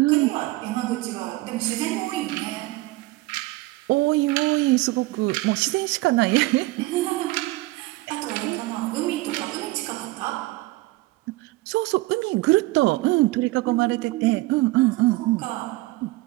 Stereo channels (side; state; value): left; quieter; 20.1 dB